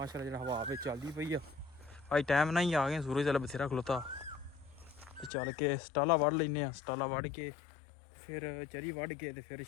ਜਿਹੜਾ ਹਵਾ ਵਿੱਚ ਚੱਲਦੀ ਪਈ ਆ ਅੱਜ ਟਾਈਮ ਨਾਲ ਹੀ ਆ ਗਏ ਸੂਰਜ ਚੱਲ ਬਥੇਰਾ ਖਲੋਤਾ ਤੇ ਚੱਲ ਕੇ ਸਟਾਲਾ ਵੜ ਲੈਨੇ ਆ ਸਟਾਲਾ ਵੜ ਕੇ ਫਿਰ ਚਰੀ ਵੜ ਕੇ ਤੇ ਫਿਰ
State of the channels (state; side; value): drops out; right; at 5.3 s